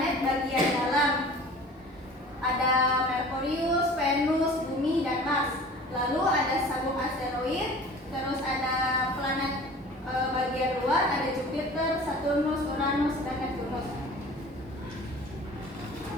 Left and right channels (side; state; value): both; normal; correlation 0.43